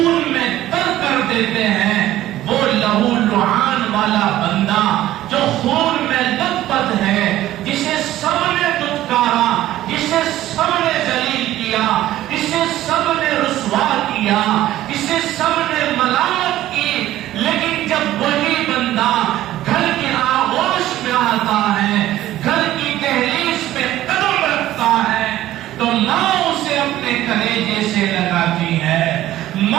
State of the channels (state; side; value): quieter; left; 14.2 dB